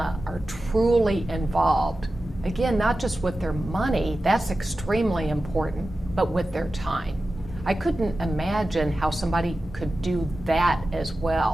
are truly involved. Again, not just with their money, that's extremely important, but with their time. I couldn't imagine how somebody could do that as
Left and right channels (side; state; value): both; normal; correlation 0.94